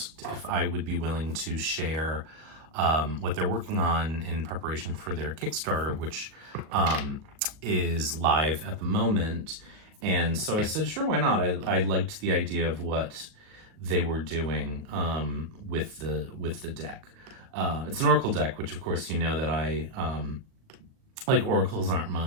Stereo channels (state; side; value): late; left; 37 ms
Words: if I would be willing to share what they're working on in preparation for their Kickstarter, which is live at the moment. And so I said, sure, why not? I liked the idea of what they were doing with the deck. It's an Oracle deck, which of course you know that I like. Oracles aren't